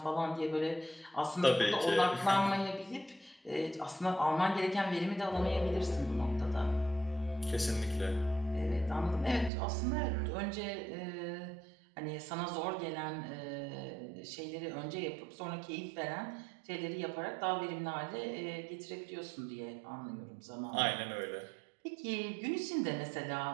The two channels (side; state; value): left; drops out; at 9.5 s